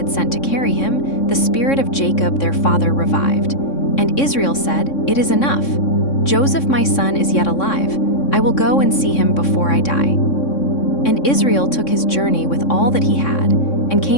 sent to carry him, the spirit of Jacob their father revived. And Israel said, It is enough. Joseph my son is yet alive. I will go and see him before I die. And Israel took his journey with all that he had, and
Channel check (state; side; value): late; right; 3.6 ms